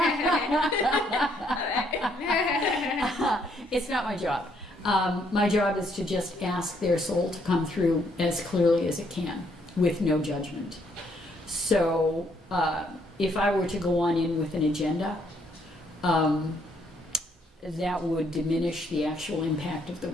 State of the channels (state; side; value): normal; both; correlation 0.70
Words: It's not my job. My job is to just ask their soul to come through as clearly as it can, with no judgment. So if I were to go on in with an agenda, that would diminish the actual impact of the